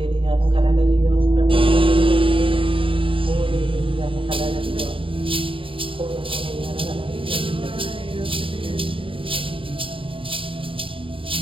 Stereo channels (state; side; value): late; left; 0.25 ms